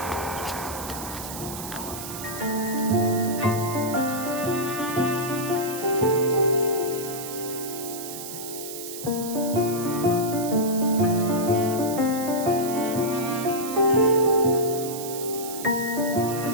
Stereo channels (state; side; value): noise; right; hiss, 9 dB below the sound